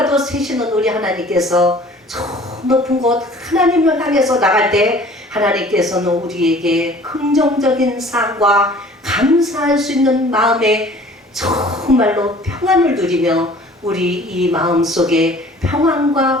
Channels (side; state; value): both; normal; correlation 0.49